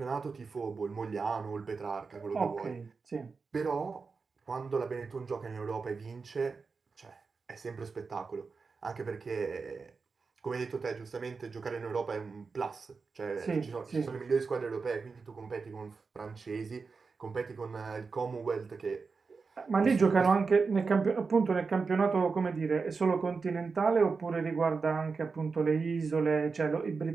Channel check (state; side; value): quieter; left; 4.7 dB